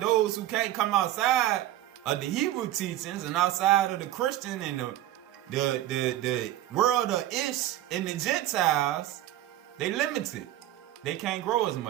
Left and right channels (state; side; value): quieter; left; 13.9 dB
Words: who can't come outside of the Hebrew teachings and outside of the Christian and the world of Ish and the Gentiles, they limited. They can't grow as